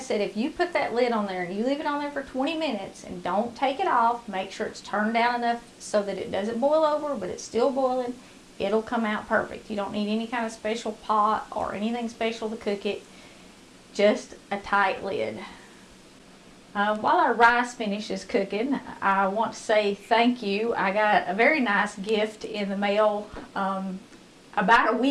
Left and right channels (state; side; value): identical; both; correlation 1.00